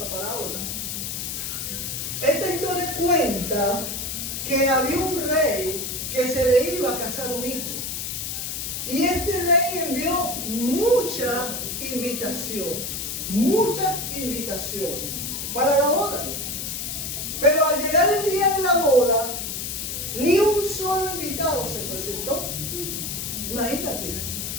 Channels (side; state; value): left; noise; hiss, 4 dB below the sound